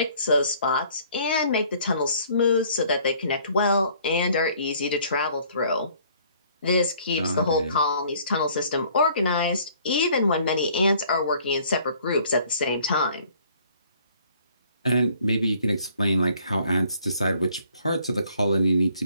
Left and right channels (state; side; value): inverted; both; correlation -0.59